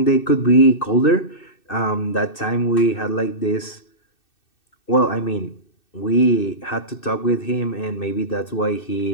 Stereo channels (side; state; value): right; late; 2.6 ms